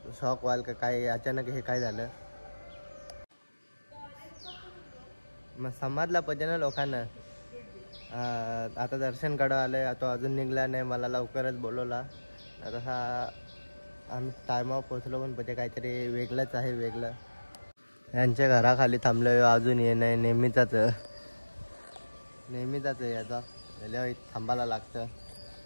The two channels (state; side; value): inverted; both; correlation -1.00